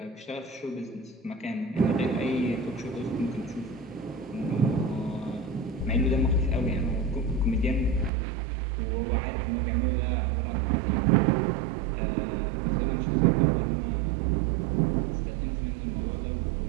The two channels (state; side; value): drops out; left; at 8.1 s